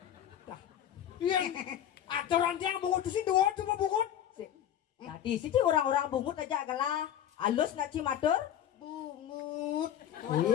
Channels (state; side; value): quieter; right; 10.6 dB